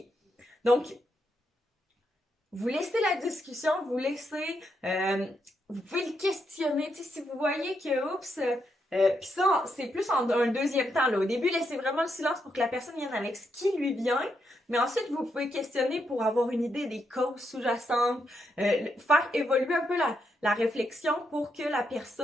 Donc, vous laissez la discussion, vous laissez, vous pouvez le questionner, tu sais, si vous voyez que, puis ça, c'est plus en un deuxième temps, là. Au début, laissez vraiment le silence pour que la personne vienne avec ce qui lui vient, mais ensuite, vous pouvez questionner pour avoir une idée des causes sous-jacentes, faire évoluer un peu la réflexion pour que la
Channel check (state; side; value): normal; both; correlation 0.80